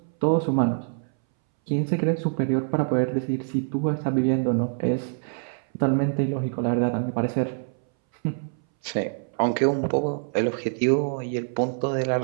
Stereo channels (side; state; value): left; silent; 61 dB below the other